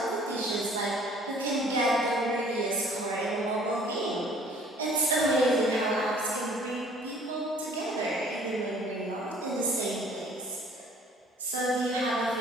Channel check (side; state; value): both; normal; correlation 0.54